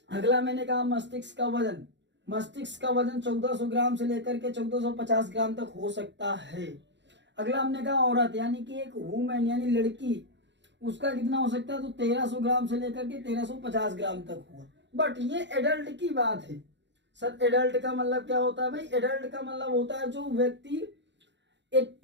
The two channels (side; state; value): left; late; 0.52 ms